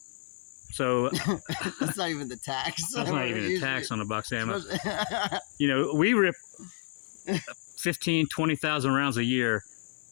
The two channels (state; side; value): silent; right; 58 dB below the other